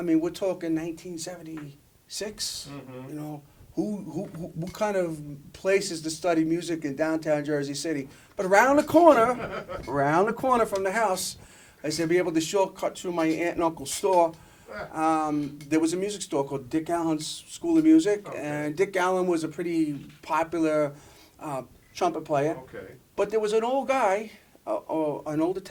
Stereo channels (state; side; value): identical; both; correlation 1.00